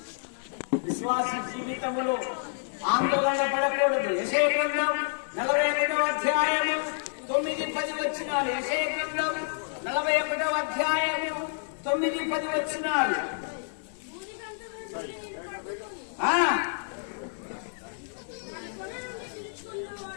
విశ్వాస జీవితంలో ఆందోళన పడకూడదు. యెషయా గ్రంథం 41వ అధ్యాయము 9-10 వచనాలు. యెషయా గ్రంథం 41వ అధ్యాయము 9-10 వచనాలు.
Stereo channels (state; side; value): silent; right; digital silence